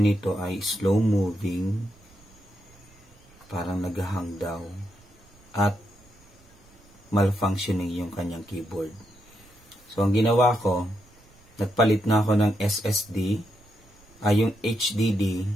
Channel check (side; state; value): right; noise; rumble, 28 dB below the sound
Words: nito ay slow moving, parang naghahang daw, at malfunctioning yung kanyang keyboard. So ang ginawa ko, nagpalit na ako ng SSD, yung HDD,